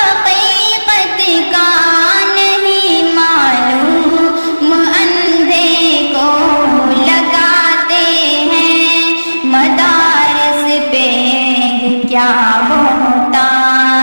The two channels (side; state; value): both; inverted; correlation -1.00